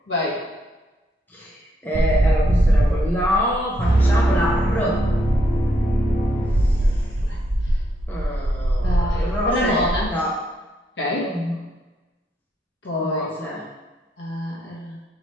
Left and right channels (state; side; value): normal; both; correlation 0.76